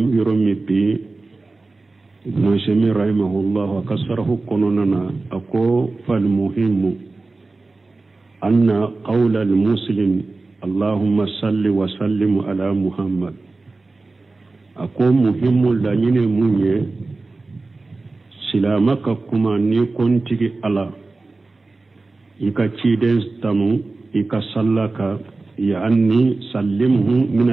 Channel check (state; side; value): quieter; left; 3.5 dB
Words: yuromi bi Nushemi rahimahullah akasarahu kononana ako fal muhimu anna qawla al-muslim Allahumma salli wa sallim ala Muhammad. Ako muhimu la nyine munye silamaka kuma ni kontigi ala ika chiden tamu ika sallaka ya anni sallimhu min